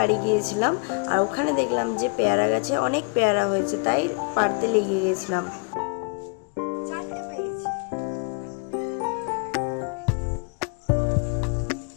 গিয়েছিলাম। আর ওখানে দেখলাম যে পেয়ারা গাছে অনেক পেয়ারা হয়েছে, তাই পাড়তে লেগে গেছিলাম।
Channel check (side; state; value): right; quieter; 35.1 dB